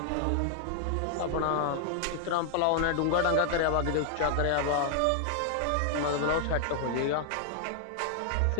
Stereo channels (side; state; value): both; different; correlation 0.00